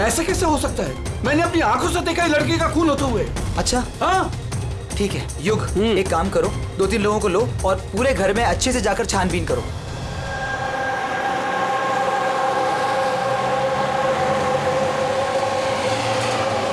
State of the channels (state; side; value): identical; both; correlation 1.00